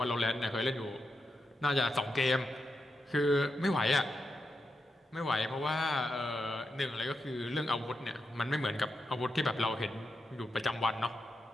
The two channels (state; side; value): normal; both; correlation 0.86